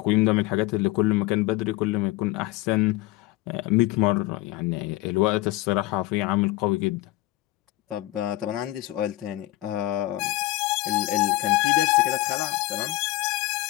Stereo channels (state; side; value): quieter; right; 17.7 dB